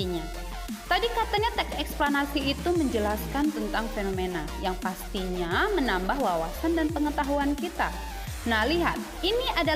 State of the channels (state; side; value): identical; both; correlation 1.00